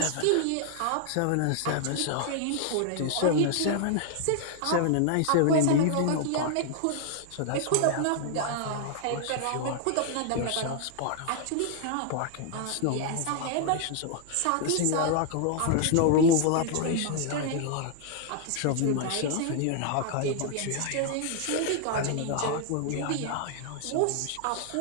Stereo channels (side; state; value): both; different; correlation 0.00